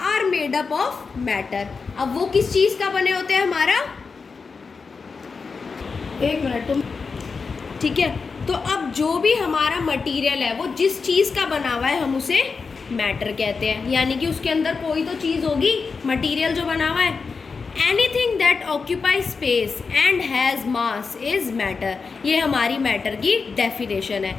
are made up of matter. अब वो किस चीज़ का बने होते हैं हमारा? एक मिनट तुम. ठीक है, तो अब जो भी हमारा मटेरियल है वो जिस चीज़ का बना हुआ है हम उसे मैटर कहते हैं. यानी कि उसके अंदर कोई तो चीज़ होगी, मटेरियल जो बना हुआ है. Anything that occupy space and has mass is matter. ये हमारी मैटर की डेफिनेशन है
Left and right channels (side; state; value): right; quieter; 4.9 dB